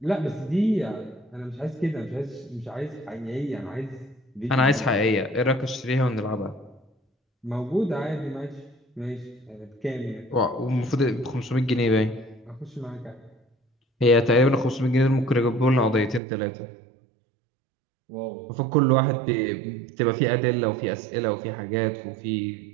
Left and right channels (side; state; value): left; drops out; at 16.2 s